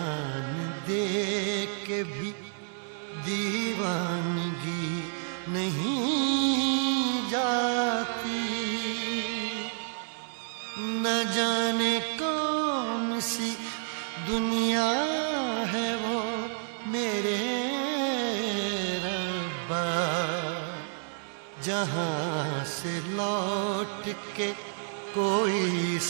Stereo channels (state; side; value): silent; left; 58 dB below the other